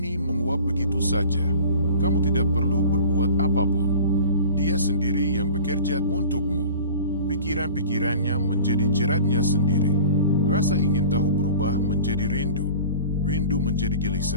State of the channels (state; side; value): inverted; both; correlation -0.40